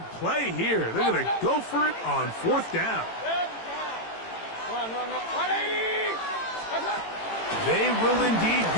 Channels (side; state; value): right; late; 18 ms